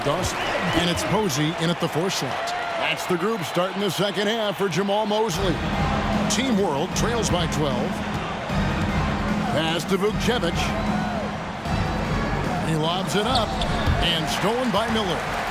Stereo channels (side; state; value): both; identical; correlation 1.00